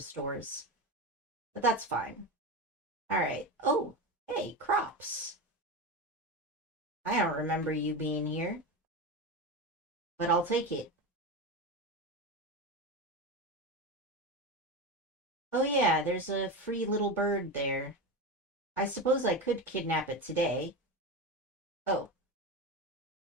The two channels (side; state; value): both; normal; correlation 0.20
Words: But that's fine. Alright. Oh, hey, crops. I don't remember you being here, but I'll take it. Oh yeah, there's a free little bird there. I suppose I could kidnap it today. Oh.